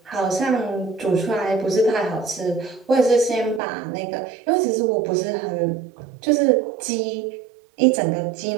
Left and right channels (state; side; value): drops out; left; at 3.6 s